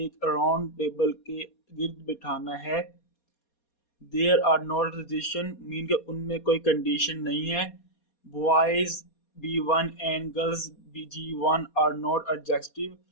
राउंड टेबल के गिर्द बिठाना है। There are not restriction mean के उनमें कोई कंडीशन नहीं है। Boys B1 and girls G1 are not adjacent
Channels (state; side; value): late; right; 4.2 ms